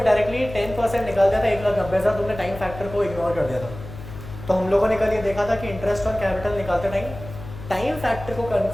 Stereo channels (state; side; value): noise; left; hum, 13 dB below the sound